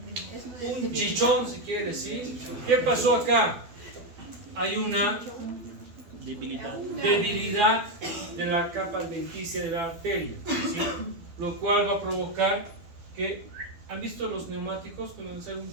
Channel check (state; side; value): late; left; 12 ms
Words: Un chichón, si quieres, ¿sí? ¿Qué pasó acá? Hay una debilidad de la capa adventicia de la arteria, ¿sí? Lo cual va a provocar que, ¿han visto los neumáticos cuando sale un